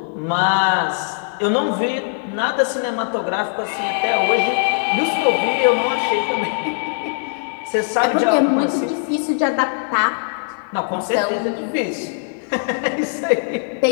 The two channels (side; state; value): right; silent; 58 dB below the other